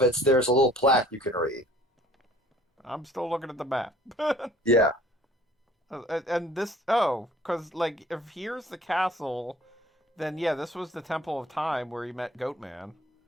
it, there's a little plaque you can read. I'm still looking at the map. Yeah. And this, because, like, if here's the castle, then yeah, this was the Temple of Time where he met Goatman.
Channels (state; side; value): normal; both; correlation 0.52